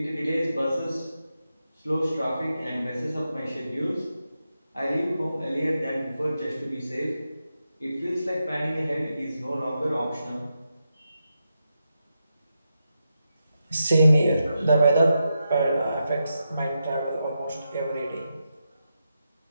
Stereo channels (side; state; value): both; inverted; correlation -0.87